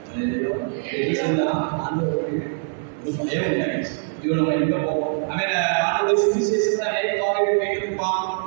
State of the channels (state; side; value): silent; left; digital silence